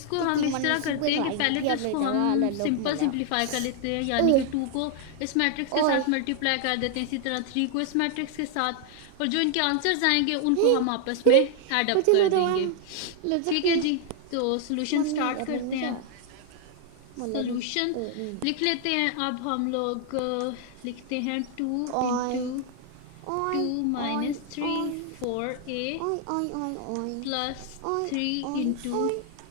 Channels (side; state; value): both; different; correlation 0.00